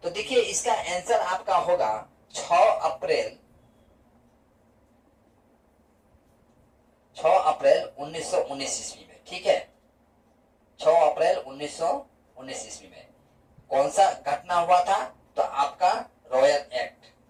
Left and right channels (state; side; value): identical; both; correlation 1.00